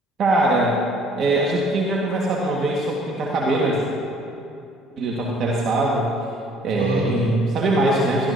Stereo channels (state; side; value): normal; both; correlation 0.58